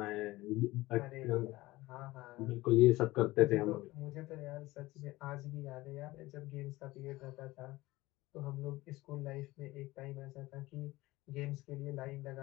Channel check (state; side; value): quieter; right; 19.0 dB